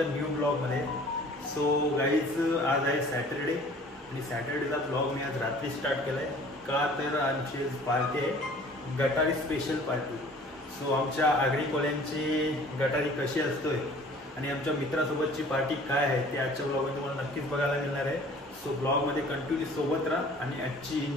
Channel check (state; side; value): normal; both; correlation 0.50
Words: न्यू ब्लॉगमध्ये. सो गाईज आज आहे सॅटरडे आणि सॅटरडेचा ब्लॉग मी आज रात्री स्टार्ट केला आहे. का तर आमची पार्टी आहे, गटारी स्पेशल पार्टी. सो आमच्या आगरी कोल्यांची गटारी कशी असतोय आणि आमच्या मित्रासोबतची पार्टी काय आहे ते आजच्या ब्लॉगमध्ये तुम्हाला नक्कीच बघायला मिळणार आहे. सो ब्लॉगमध्ये कंटिन्यू सोबत राहा आणि आजची